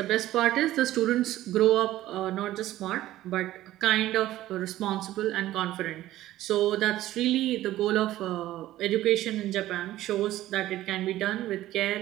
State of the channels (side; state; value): left; quieter; 14.8 dB